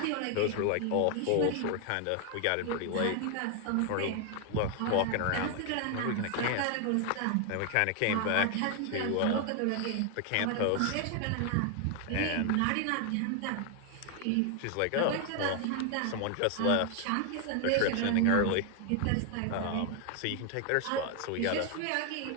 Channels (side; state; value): both; different; correlation 0.00